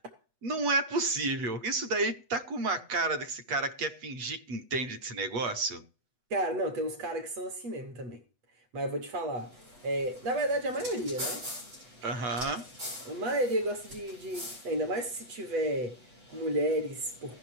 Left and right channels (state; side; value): late; left; 8.1 ms